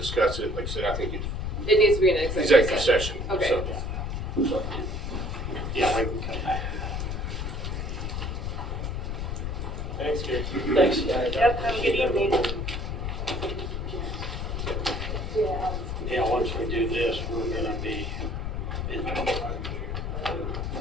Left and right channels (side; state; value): left; noise; rumble, 3 dB below the sound